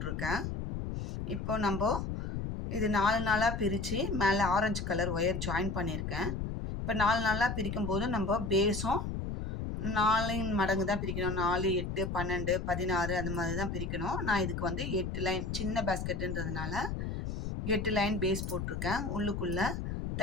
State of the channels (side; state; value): left; noise; rumble, 4 dB below the sound